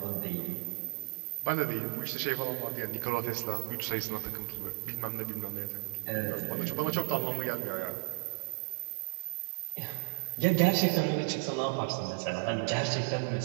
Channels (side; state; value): left; silent; digital silence